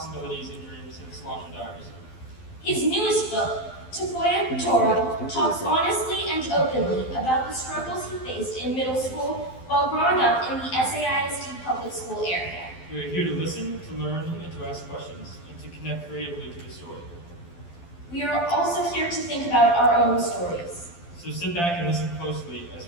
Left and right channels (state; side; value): late; right; 12 ms